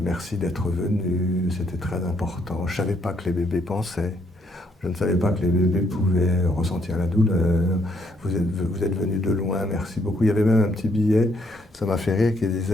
Merci d'être venu, c'était très important. Je ne savais pas que les bébés pensaient. Je ne savais pas que les bébés pouvaient ressentir la douleur. Vous êtes venu de loin, merci beaucoup. Il y avait même un petit billet, ça m'a fait rire, qui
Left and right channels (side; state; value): both; normal; correlation 0.71